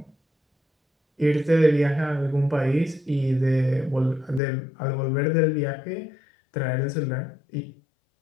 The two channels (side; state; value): right; drops out; at 4.4 s